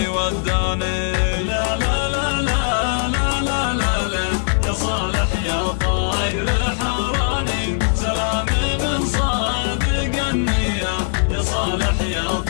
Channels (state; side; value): silent; right; digital silence